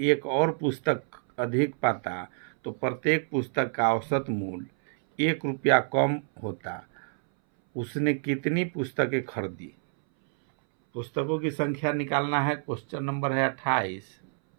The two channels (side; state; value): left; silent; 59 dB below the other